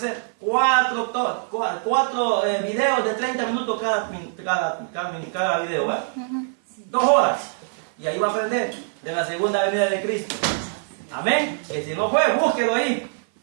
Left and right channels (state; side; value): silent; left; 57 dB below the other